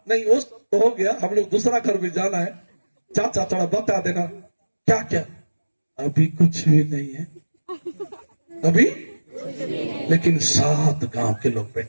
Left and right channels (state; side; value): inverted; both; correlation -1.00